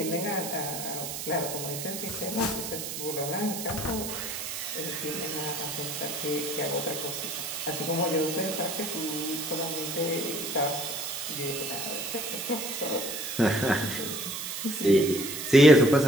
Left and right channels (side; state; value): right; noise; hiss, 6 dB below the sound